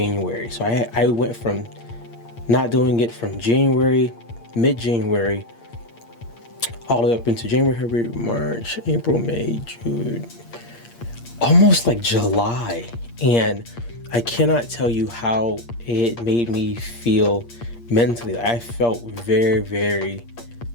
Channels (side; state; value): right; late; 8.6 ms